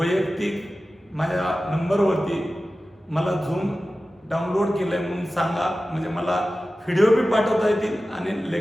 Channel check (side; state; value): both; normal; correlation 0.95